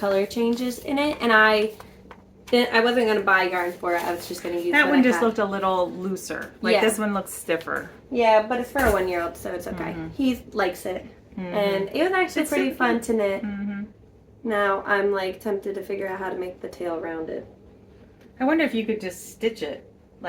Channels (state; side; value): identical; both; correlation 1.00